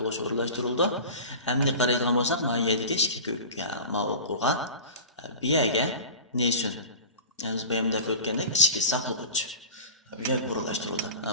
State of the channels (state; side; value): inverted; both; correlation -0.34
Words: o'rnashtirildi. Endi qaraydigan bo'lsak, miyadagi ikki ko'k ma'lum qilgan miyaga neysun. Biz bayamda o'tgandek ichki saqlovchi bu yer o'rnashtirildi.